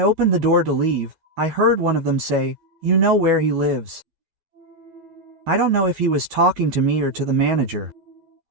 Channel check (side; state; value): left; late; 12 ms